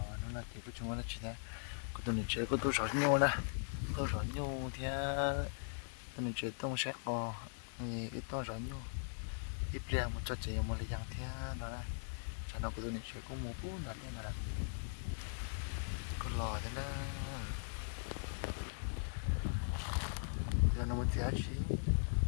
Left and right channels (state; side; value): silent; right; digital silence